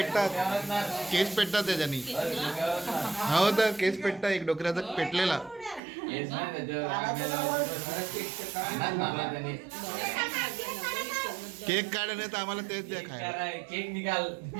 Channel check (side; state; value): left; drops out; at 5.8 s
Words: त्याच्यानी. हो तर केस पेटतात, एक डोक्याचा पेटलेला. केक काढ नाही तर आम्हाला तेच द्या खायला. केक निकाल